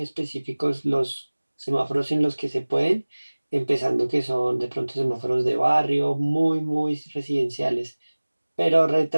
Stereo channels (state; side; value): inverted; both; correlation -1.00